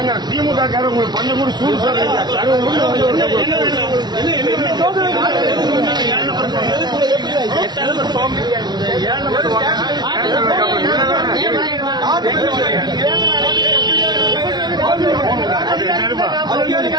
திமுக காரங்க உங்களுக்கு கொஞ்சம் கூட சூடு சொல்றீங்க.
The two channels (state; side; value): late; left; 0.20 ms